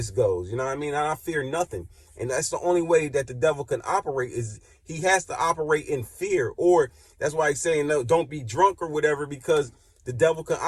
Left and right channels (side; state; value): both; identical; correlation 1.00